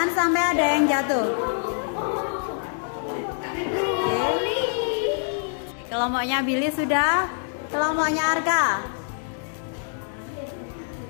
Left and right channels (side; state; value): right; silent; digital silence